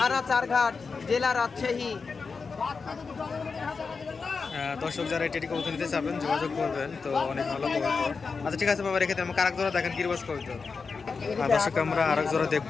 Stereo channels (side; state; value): right; quieter; 4.9 dB